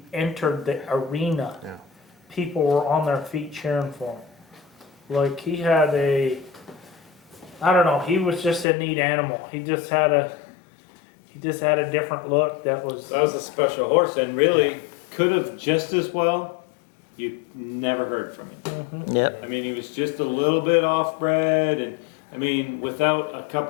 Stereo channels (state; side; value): drops out; right; at 8.7 s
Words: entered the arena. Yeah. People were on their feet cheering for him. Like he had I don't know, he was just a neat animal. He just had a different look that was. That was a special horse, and really Yeah. could have just as well. You never heard from him. Yep. I mean, he was just a little bit off-bred, and I mean, without a